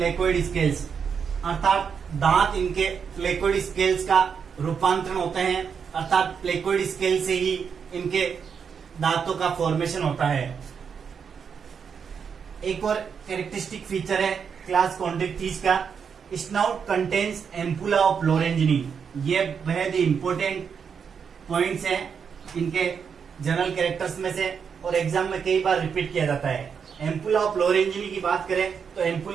scales, अर्थात दांत इनके प्लेकोइड स्केल्स का रूपांतरण होते हैं, अर्थात प्लेकोइड स्केल से ही इनके दांतों का फॉर्मेशन होता है। एक और कैरेक्टरिस्टिक फीचर है क्लास कॉन्ड्रिक्थिस का, स्नाउट कंटेन्स एम्पुला ऑफ लोरेंजिनी। ये बेहद ही इंपॉर्टेंट पॉइंट्स हैं इनके जनरल कैरेक्टर्स में से, और एग्जाम में कई बार रिपीट किया जाता है। एम्पुला ऑफ लोरेंजिनी की बात करें तो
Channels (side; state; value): left; quieter; 6.6 dB